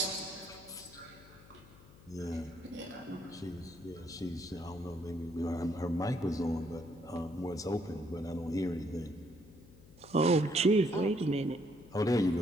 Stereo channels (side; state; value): left; noise; hum, 22 dB below the sound